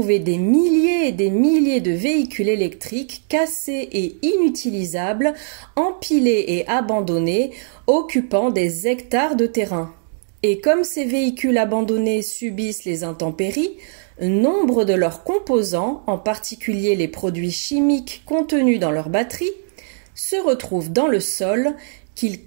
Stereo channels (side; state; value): left; silent; digital silence